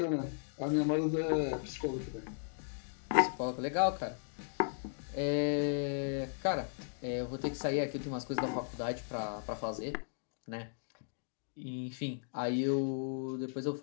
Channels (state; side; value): silent; right; digital silence